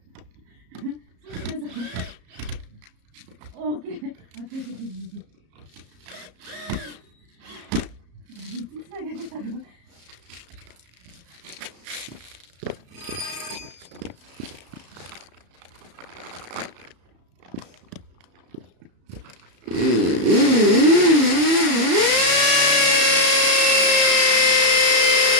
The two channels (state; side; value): late; left; 34 ms